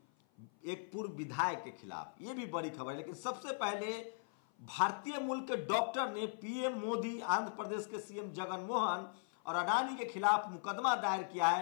एक पूर्व विधायक के खिलाफ। यह भी बड़ी खबर है। लेकिन सबसे पहले भारतीय मूल के डॉक्टर ने पीएम मोदी, आंध्र प्रदेश के सीएम जगन मोहन और अडानी के खिलाफ मुकदमा दायर किया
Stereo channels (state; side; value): silent; right; 52 dB below the other